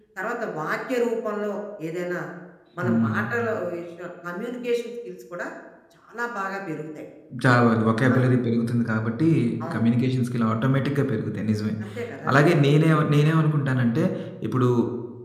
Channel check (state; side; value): identical; both; correlation 1.00